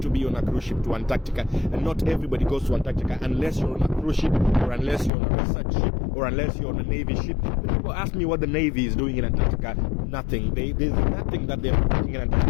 to be on a cruise ship to Antarctica, and not everybody goes to Antarctica unless you're on a cruise ship, or unless you're on a research ship, or unless you're on a Navy ship. But people ask me what the Navy is doing in Antarctica. Nothing. There's nothing that they're doing in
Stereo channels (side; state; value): right; drops out; at 5.1 s